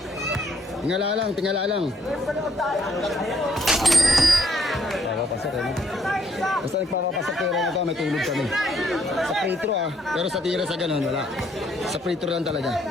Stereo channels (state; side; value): normal; both; correlation 0.69